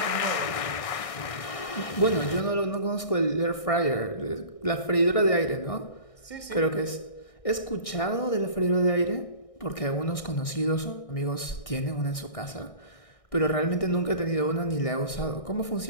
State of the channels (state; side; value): late; right; 1.6 ms